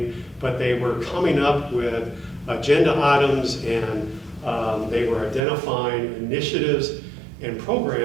but they were coming up with agenda items, and they were identifying initiatives and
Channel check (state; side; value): drops out; left; at 5.4 s